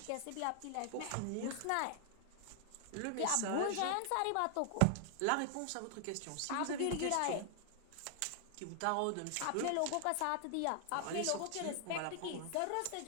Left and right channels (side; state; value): both; different; correlation 0.00